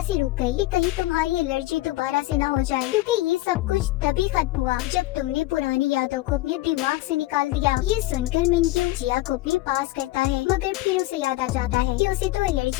से रुक गई कि कहीं तुम्हारी एलर्जी दोबारा से ना हो जाए, क्योंकि ये सब कुछ तभी खत्म हुआ जब तुमने पुरानी यादों को अपने दिमाग से निकाल दिया। ये सुनकर मिंक्यू जिया को अपने पास करता है, मगर फिर उसे याद आ जाता है कि उसे तो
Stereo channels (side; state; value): right; quieter; 17.7 dB